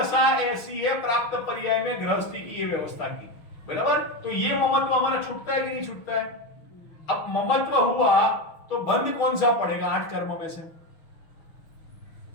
ऐसी है प्राप्त पर्याय में गृहस्थी की ये व्यवस्था की बराबर। तो ये ममत्व हमारा छूटता है कि नहीं छूटता है। अब ममत्व हुआ तो बंध कौन सा पड़ेगा 8 कर्मों में से?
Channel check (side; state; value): right; late; 6.2 ms